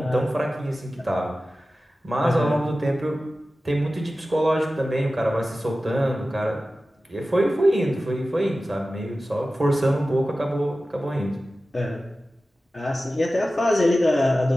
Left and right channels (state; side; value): normal; both; correlation 0.95